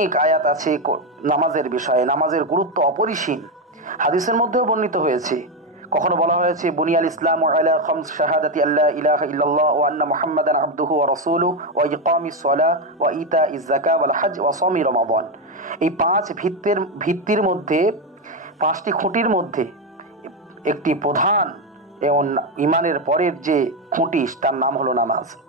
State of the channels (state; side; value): normal; both; correlation 0.08